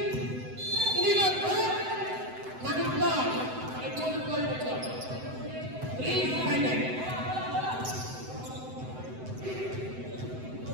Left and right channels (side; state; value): left; late; 7.9 ms